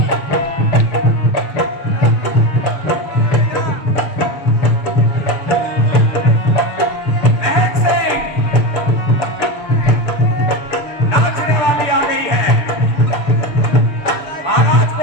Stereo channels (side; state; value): right; late; 6.8 ms